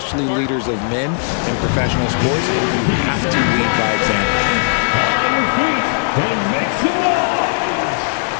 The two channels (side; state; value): right; silent; digital silence